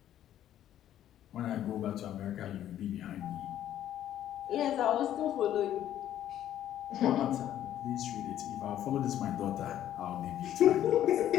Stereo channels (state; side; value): quieter; right; 11.5 dB